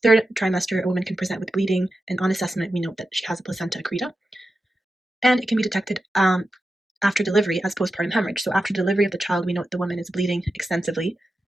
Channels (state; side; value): normal; both; correlation 0.91